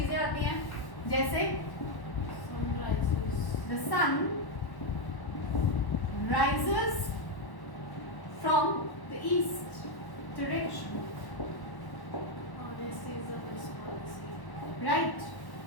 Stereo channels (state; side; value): late; right; 1.1 ms